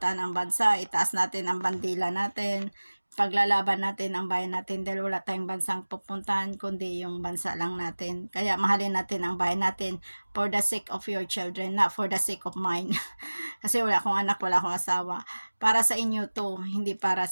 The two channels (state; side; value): inverted; both; correlation -1.00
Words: ang bansa, itaas natin ang bandila natin, paglalaban natin ang bayan natin dahil wala tayong bansang pupuntahan kundi yung bansa lang natin. Kaya mahalin natin ang bayan natin for the sake of your children, not for the sake of mine. Kasi wala akong anak, wala akong asawa. Para sa inyo to, hindi para